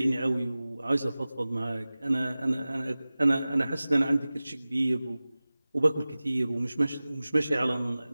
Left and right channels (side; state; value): both; inverted; correlation -0.97